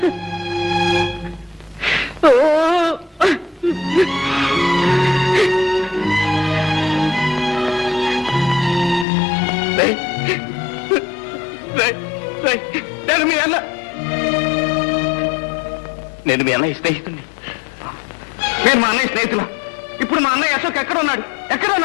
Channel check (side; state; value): right; drops out; at 9.1 s